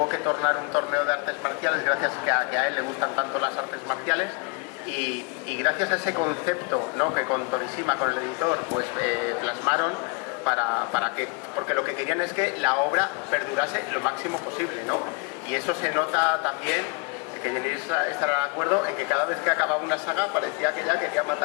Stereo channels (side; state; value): right; quieter; 29.2 dB